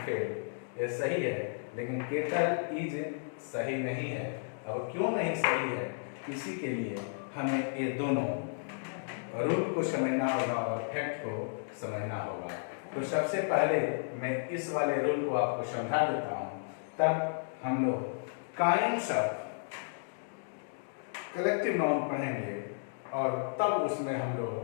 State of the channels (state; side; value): silent; right; digital silence